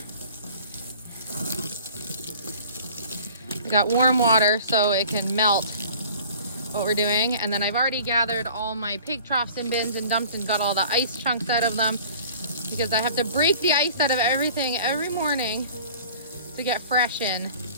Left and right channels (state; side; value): inverted; both; correlation -0.47